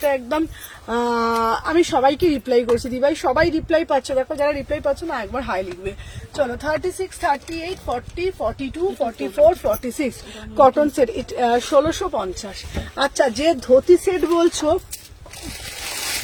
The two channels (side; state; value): both; identical; correlation 1.00